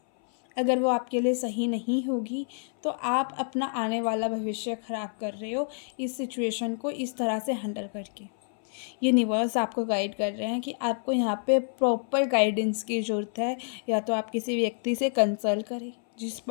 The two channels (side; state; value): right; silent; 59 dB below the other